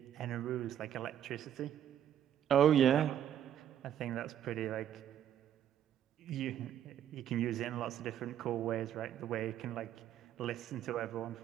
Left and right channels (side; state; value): left; quieter; 10.2 dB